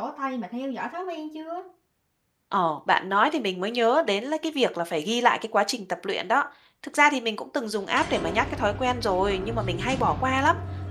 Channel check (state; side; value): identical; both; correlation 1.00